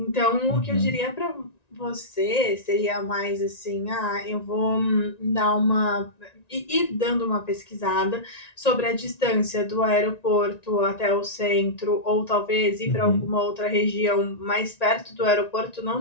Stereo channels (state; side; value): late; right; 1.9 ms